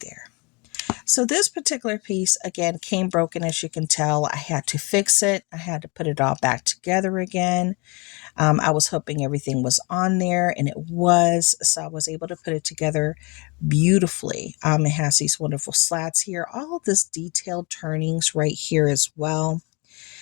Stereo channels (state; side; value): quieter; right; 29.0 dB